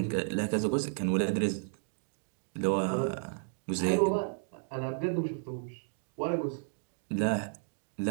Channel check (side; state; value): left; silent; digital silence